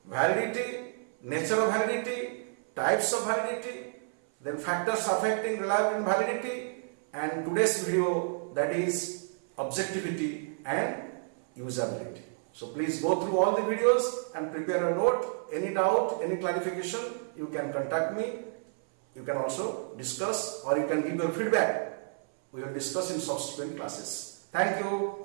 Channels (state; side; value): silent; left; 58 dB below the other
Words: validity, nature of validity, types of validity, then factors affecting reliability and validity, and today's video, that is objectivity and usability. So please go through all the videos and prepare a note. Any doubt, any clarification, you can contact me. You can also discuss, or you can give your feedback. We will discuss in subsequent classes. Thank you.